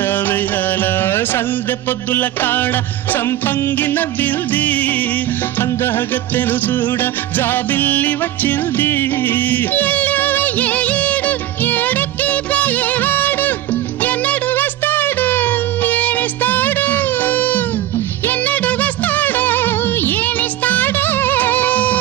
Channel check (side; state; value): left; quieter; 13.7 dB